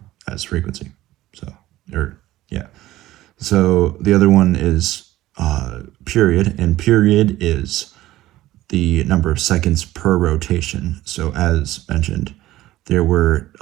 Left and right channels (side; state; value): left; quieter; 15.7 dB